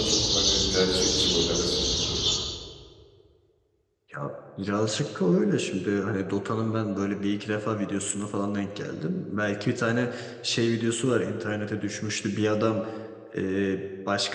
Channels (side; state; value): both; identical; correlation 1.00